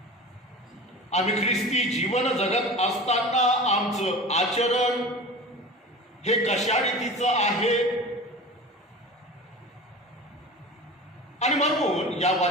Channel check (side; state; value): both; normal; correlation 0.34